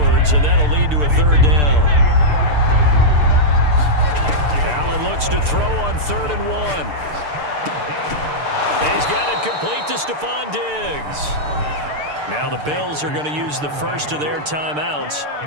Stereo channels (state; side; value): late; left; 6.7 ms